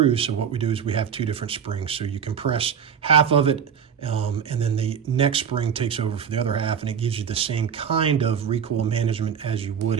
So what we do is we have two different springs. So you compress half of it, and then the next spring takes over for the other half, and it gives you the same kind of recoil management as you would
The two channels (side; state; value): left; quieter; 7.6 dB